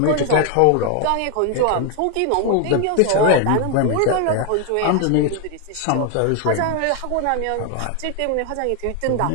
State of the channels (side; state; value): both; different; correlation 0.01